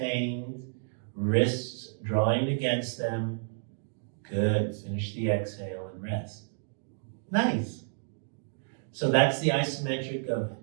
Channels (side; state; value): left; silent; digital silence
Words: Wrists drawing against them. Good. Finish the exhale and rest. Nice. So that's the isometric of